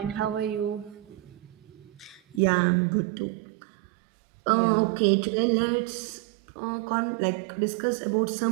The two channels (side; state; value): left; drops out; at 2.4 s